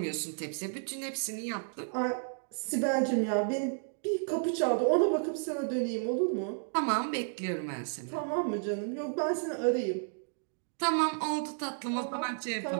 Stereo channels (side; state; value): left; silent; digital silence